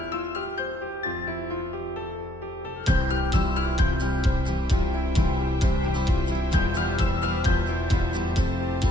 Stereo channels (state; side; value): normal; both; correlation 0.67